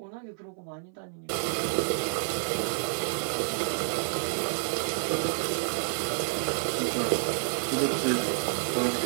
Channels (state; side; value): silent; left; 58 dB below the other